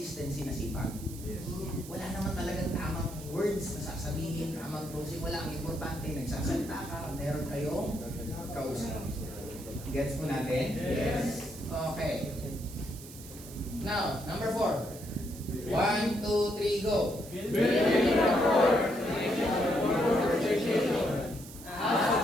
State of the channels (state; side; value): noise; right; hiss, 16 dB below the sound